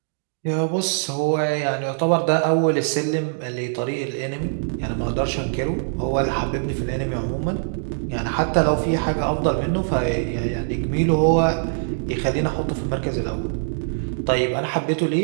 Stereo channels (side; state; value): left; silent; digital silence